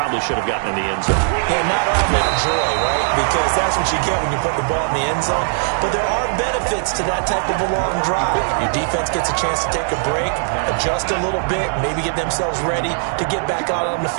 should have gotten in the end zone. Yeah, not all that joy, right? Because that's what you get when you put the ball in the end zone. But there are benefits to that type of a long drive. Your defense gets a chance to take a break, adjust a little bit, maybe get themselves ready to get back out on the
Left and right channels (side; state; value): left; silent; digital silence